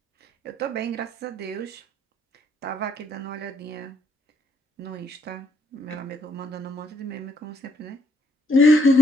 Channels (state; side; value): normal; both; correlation 0.70